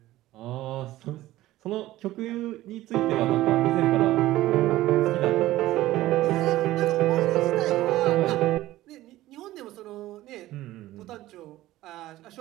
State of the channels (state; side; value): quieter; left; 16.0 dB